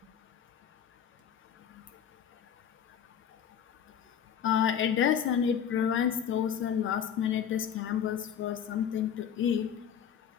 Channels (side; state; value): right; quieter; 8.6 dB